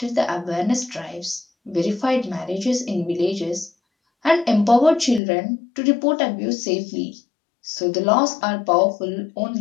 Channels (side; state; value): right; drops out; at 5.2 s